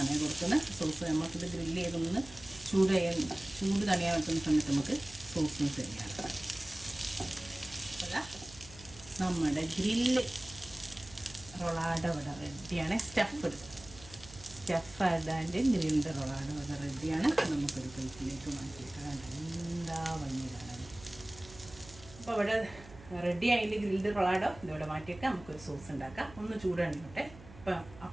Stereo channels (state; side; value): noise; right; hum, 19 dB below the sound